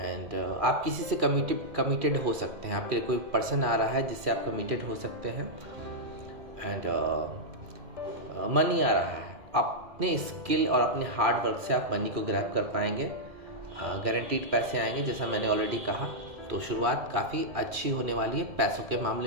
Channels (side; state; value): left; late; 2.4 ms